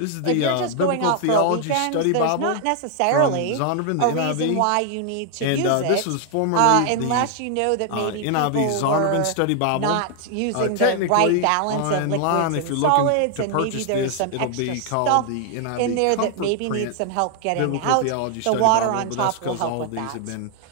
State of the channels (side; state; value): both; different; correlation 0.00